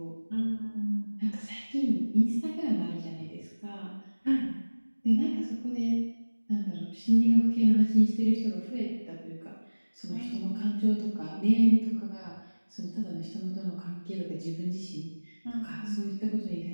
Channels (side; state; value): both; inverted; correlation -1.00